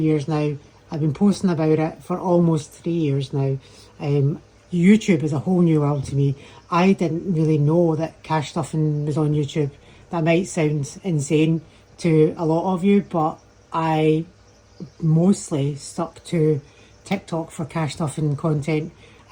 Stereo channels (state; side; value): identical; both; correlation 1.00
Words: now. I've been posting about it for almost 3 years now. YouTube is a whole new world to me. I didn't really know that cash stuffing was on YouTube. That might sound insane to a lot of you, but I mostly stuck to TikTok for cash stuffing content